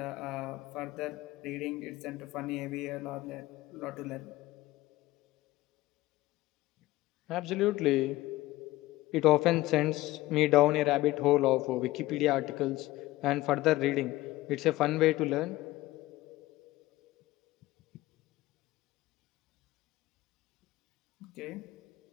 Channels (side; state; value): right; quieter; 17.8 dB